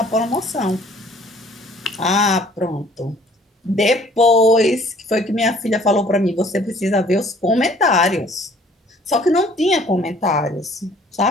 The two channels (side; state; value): both; normal; correlation 0.56